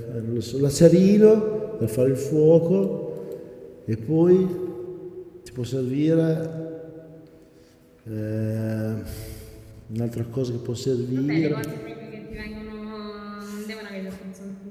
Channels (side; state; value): both; identical; correlation 1.00